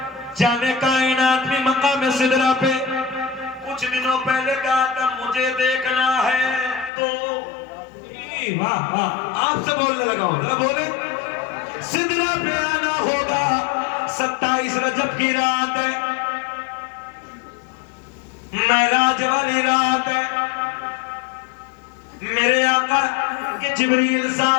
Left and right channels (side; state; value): right; drops out; at 6.9 s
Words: جانے کائنات میں مقام صدرہ پہ کچھ دنوں پہلے کہا تھا مجھے دیکھنا ہے تو واہ واہ آپ سے بولنے لگا ہوں ذرا بولے صدرہ پہ آنا ہوگا 27 رجب کی رات ہے معراج والی رات ہے میرے آقا کے جبریل